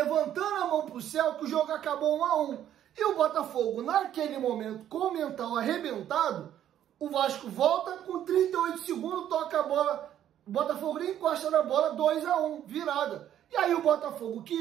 a mão para o céu, que o jogo acabou 1-1. E o Botafogo, naquele momento, com o mental arrebentado, o Vasco volta com 38 segundos, toca a bola, o Botafogo nem encosta na bola, 2-1, virada. E aí o Botafogo,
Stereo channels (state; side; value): quieter; left; 11.0 dB